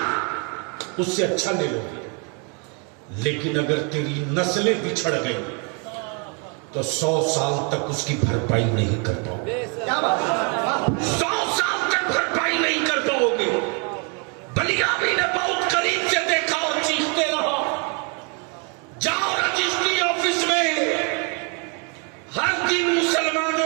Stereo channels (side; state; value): left; quieter; 35.6 dB